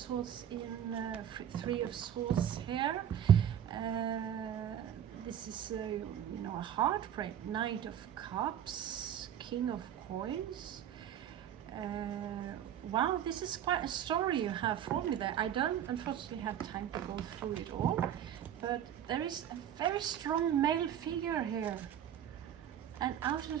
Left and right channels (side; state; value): left; quieter; 9.9 dB